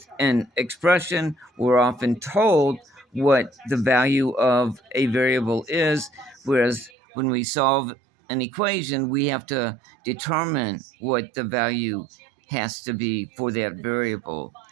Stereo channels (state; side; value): drops out; left; at 6.9 s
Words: an expression, we're often told what the value of a variable is, whereas when we solve an equation, we have to determine what the value has to be for that variable.